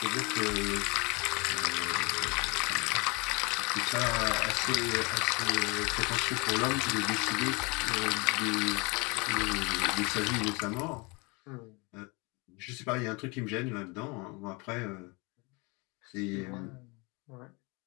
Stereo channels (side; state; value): right; quieter; 28.2 dB